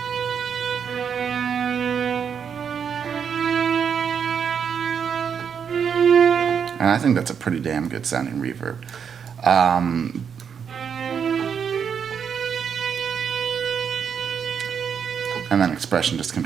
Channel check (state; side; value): quieter; left; 7.2 dB